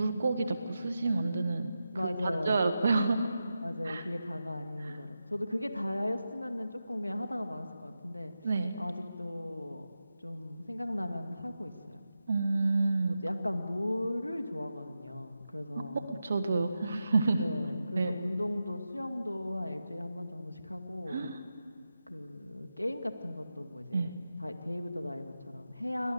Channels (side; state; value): both; inverted; correlation -0.90